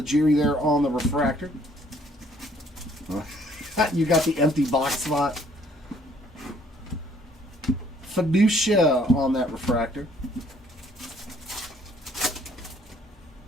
there on the refractor. You got the empty box spot. Fiducia on that refractor.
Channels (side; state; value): both; normal; correlation 0.62